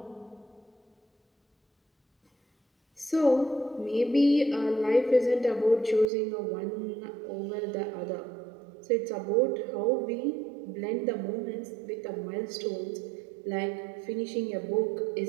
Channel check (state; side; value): drops out; left; at 6.1 s